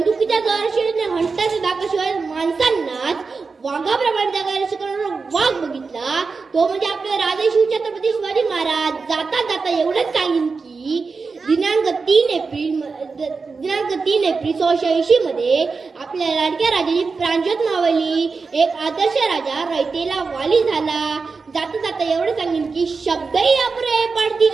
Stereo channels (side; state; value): left; quieter; 4.6 dB